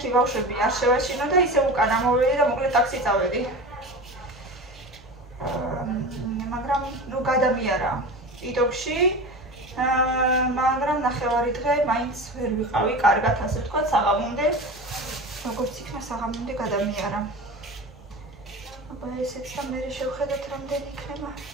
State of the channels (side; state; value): both; normal; correlation 0.31